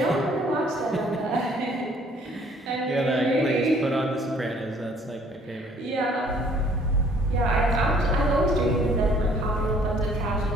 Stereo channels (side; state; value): both; normal; correlation 0.59